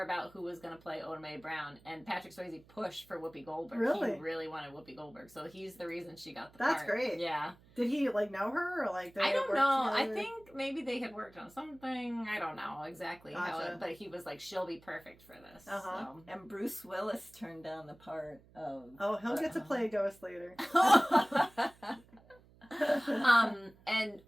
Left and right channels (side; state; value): right; noise; hum, 26 dB below the sound